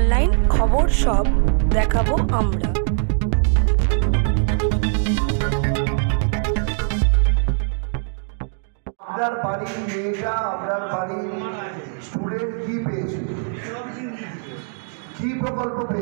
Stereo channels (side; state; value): left; silent; digital silence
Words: খবর সব দেখাবো আমরা। আপনার বাড়ির মেয়েটা, আপনার বাড়ির স্টুডেন্ট কি পেয়েছে, কি প্রকল্প